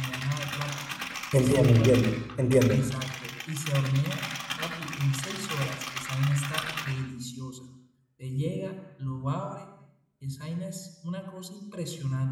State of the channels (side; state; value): both; identical; correlation 1.00